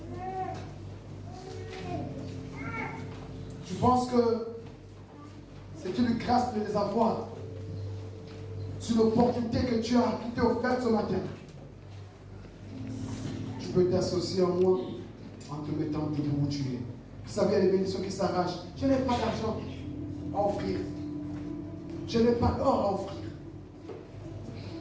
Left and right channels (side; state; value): both; identical; correlation 1.00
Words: Je pense que c'est une grâce de les avoir. C'est une opportunité que tu as qui t'est offerte ce matin. Tu peux t'associer à moi en te mettant debout où tu es. Vous savez, il y a des bénédictions qui s'arrachent. Je n'ai pas d'argent à offrir. Je n'ai pas d'or à offrir.